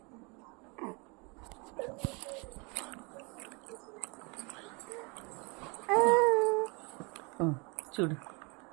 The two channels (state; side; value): quieter; left; 30.3 dB